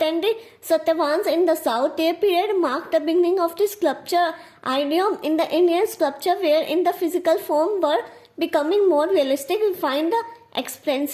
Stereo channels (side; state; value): both; identical; correlation 1.00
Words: and the Satyavahans in the south. Their period marked the beginning of the sculpture idiom in the Indian sculpture, where in the physical form were becoming more realistic, refined,